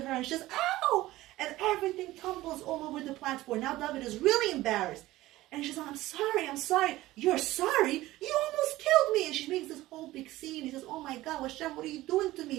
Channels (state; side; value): quieter; left; 17.0 dB